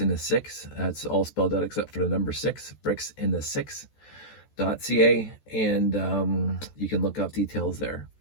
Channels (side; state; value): right; late; 14 ms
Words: the 6. That's all spelled out except for the number 6, bricks in the 6.ca, and you can look up details there.